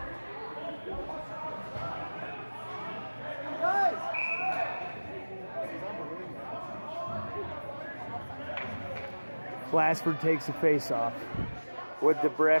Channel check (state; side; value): inverted; both; correlation -1.00